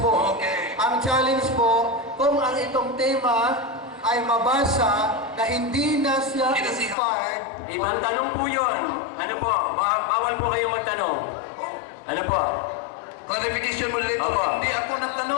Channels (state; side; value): drops out; right; at 7.0 s